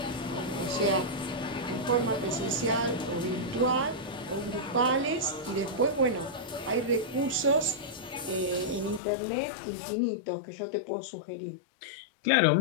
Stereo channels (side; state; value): right; drops out; at 9.0 s